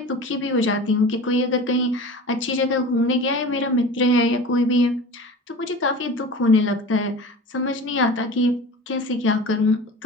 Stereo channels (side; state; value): both; normal; correlation 0.35